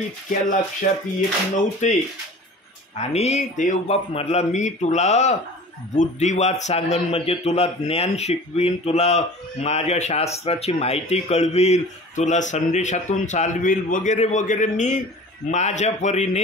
लक्षात येत नव्हते. आणि देवबाप म्हटला, मी तुला बुद्धिवाद सांगन, म्हणजे तुला ज्ञान शिकवीन, तुला माझ्या शास्त्राची माहिती कळवील, तुला संदेशातून चालवील वगैरे वगैरे. मी माझ्या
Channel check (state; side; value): normal; both; correlation 0.41